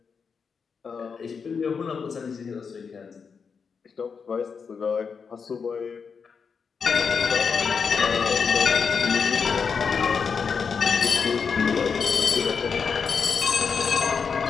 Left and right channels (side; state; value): right; quieter; 5.9 dB